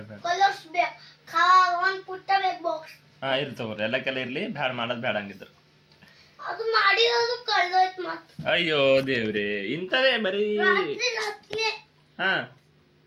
ಕಲರ್ಸ್ ಬೇಕು ಒಂದ್ ಪುಟ್ಟ ಬೇಕು ಬಾಕ್ಸ್ ಹಾ ಇರ್ಲಿ ತಗೋರಿ ಎಲ್ಲಕ್ಕೆಲ್ಲ ಇರ್ಲಿ ಬ್ಯಾಡ ಮಾಡೋದು ಬ್ಯಾಡ ಹಂಗಿದ್ರು ಅದು ಮಾಡಿರೋದು ಕಳ್ದೋಯ್ತು ಮತ್ತೆ ಅಯ್ಯೋ ದೇವ್ರಿ ಇಂಥವೇ ಬರೀ ರಾತ್ರಿ ಹಾ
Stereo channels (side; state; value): both; identical; correlation 1.00